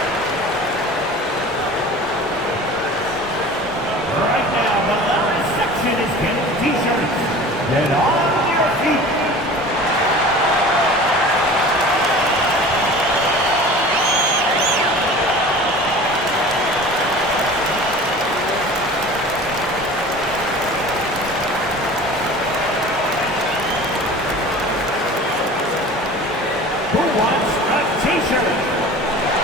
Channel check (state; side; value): normal; both; correlation 0.40